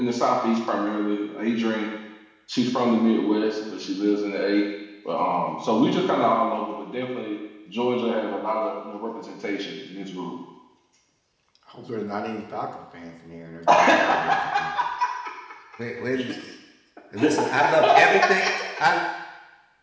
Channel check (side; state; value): both; identical; correlation 1.00